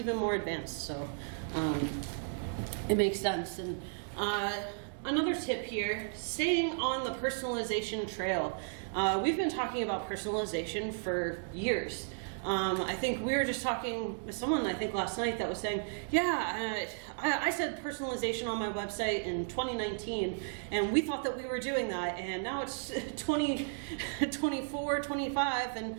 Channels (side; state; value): left; silent; digital silence